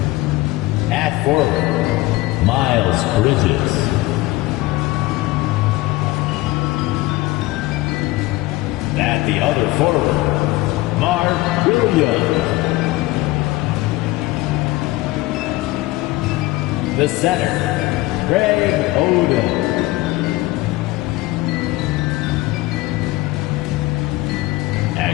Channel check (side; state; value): right; quieter; 19.2 dB